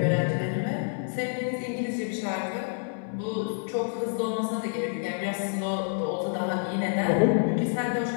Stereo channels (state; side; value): silent; right; 59 dB below the other